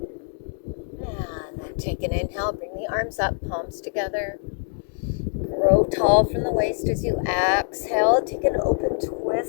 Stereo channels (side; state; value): right; silent; 62 dB below the other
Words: And then take an inhale, bring the arms up, palms together. Grow tall from the waist as you exhale. Take an open